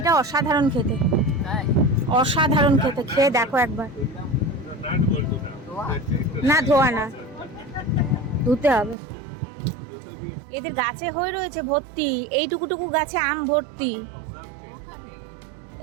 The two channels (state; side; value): drops out; left; at 9.0 s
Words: অসাধারণ খেতে, অসাধারণ খেতে, খেয়ে দেখো একবার। না ধোয়া না, ধুতে হবে। এদের গাছে হয়ে রয়েছে ভর্তি, এইটুকুটুকু গাছে আম ভর্তি।